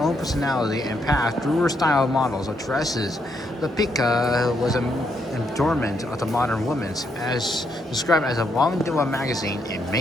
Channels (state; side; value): normal; both; correlation 0.76